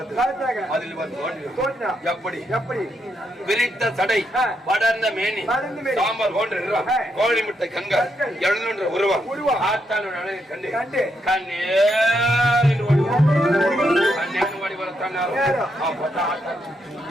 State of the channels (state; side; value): normal; both; correlation 0.79